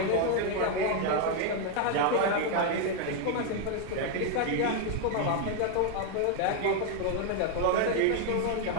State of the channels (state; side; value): different; both; correlation 0.01